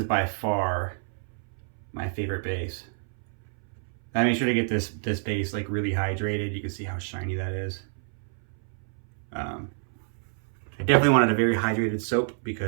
by far my favorite base. I made sure to get this base like really hydrated. You can see how shiny that is. I definitely wanted a very hydrated soap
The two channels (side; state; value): left; silent; 59 dB below the other